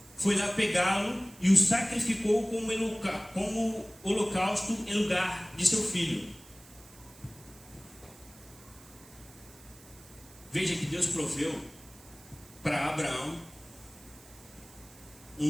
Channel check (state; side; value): noise; right; hiss, 22 dB below the sound